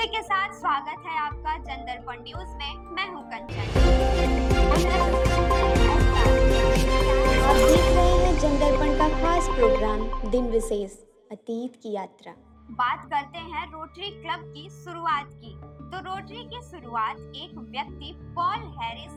के साथ स्वागत है आपका जनदर्पण न्यूज में। मैं हूँ कंचन। आप देख रहे हैं जनदर्पण का खास प्रोग्राम दिन विशेष अतीत की यात्रा। बात करते हैं रोटरी क्लब की शुरुआत की। तो रोटरी की शुरुआत एक व्यक्ति पॉल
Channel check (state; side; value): identical; both; correlation 1.00